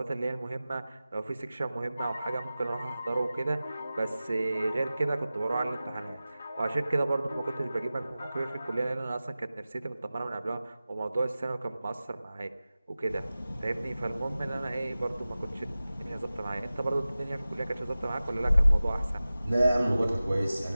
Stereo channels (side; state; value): both; inverted; correlation -0.96